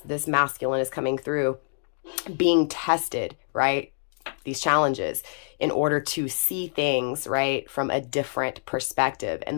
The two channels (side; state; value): right; silent; digital silence